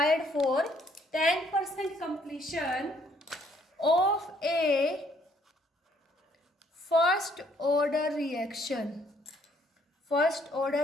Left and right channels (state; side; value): normal; both; correlation 0.66